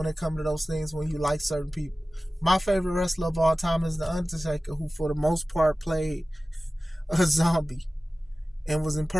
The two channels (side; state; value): both; normal; correlation 0.96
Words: it comes to those things when you like certain people. My favorite wrestler of all time is The Undertaker, who for the most part played a zombie and was